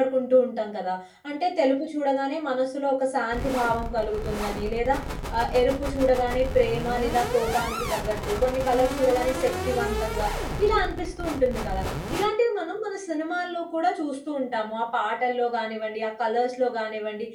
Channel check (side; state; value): both; identical; correlation 1.00